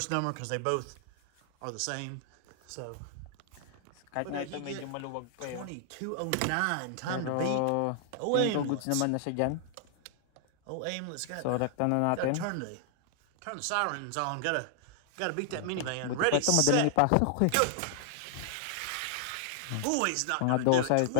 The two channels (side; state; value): both; different; correlation -0.01